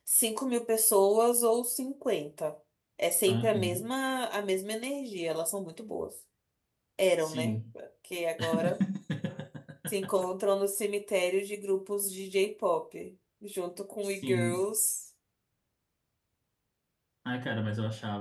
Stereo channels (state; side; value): identical; both; correlation 1.00